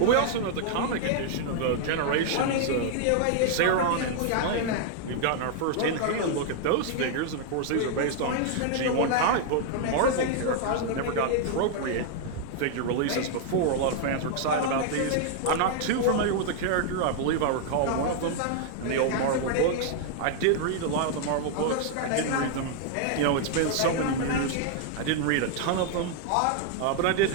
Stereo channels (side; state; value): both; different; correlation 0.00